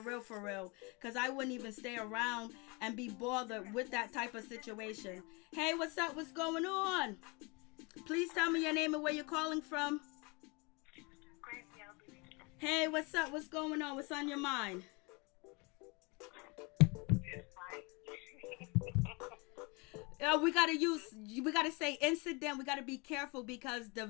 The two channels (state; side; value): quieter; right; 29.0 dB